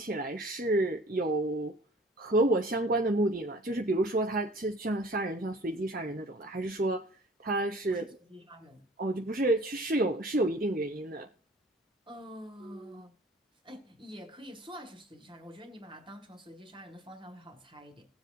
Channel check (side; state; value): both; normal; correlation 0.49